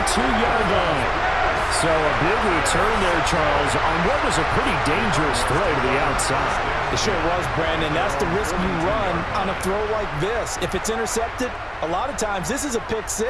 line. So a big return there, Charles, on what was a pretty dangerous throw to the outside. It sure was, Brandon. That's the risk you run on a throw like this. If it's intercepted, a lot of times this is a pick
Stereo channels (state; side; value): identical; both; correlation 1.00